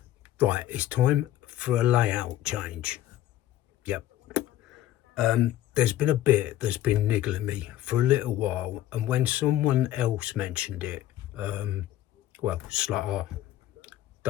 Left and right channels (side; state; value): right; quieter; 13.5 dB